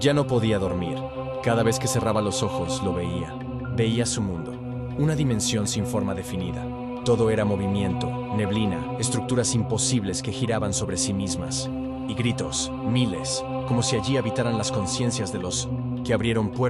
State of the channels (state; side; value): identical; both; correlation 1.00